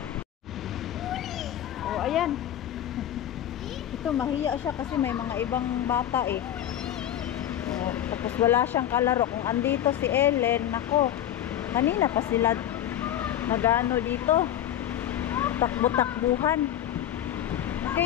Oh, ayan. Ito, mahiya siya kasi may mga ibang bata eh. Oh, tapos wala siyang kalaro. Kung andito si Ellen, nako, kanina pa sila nagano dito. Takbo-takbuhan.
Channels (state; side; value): quieter; right; 11.3 dB